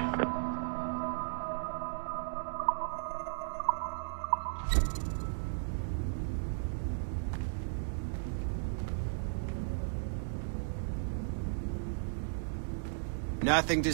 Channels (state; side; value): silent; left; digital silence